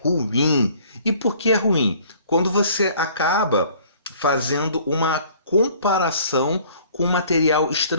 ruim. E por que é ruim? Quando você acaba fazendo uma comparação com o material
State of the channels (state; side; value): inverted; both; correlation -0.54